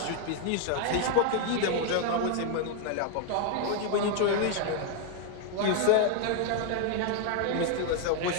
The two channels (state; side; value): different; both; correlation 0.00